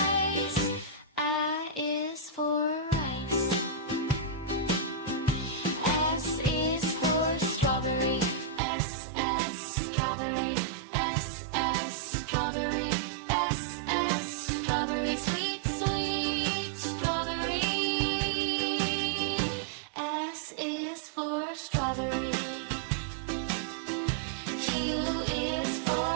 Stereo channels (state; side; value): drops out; left; at 8.6 s